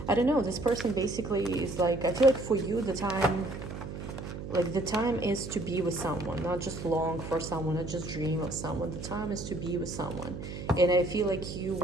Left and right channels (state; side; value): noise; right; hum, 8 dB below the sound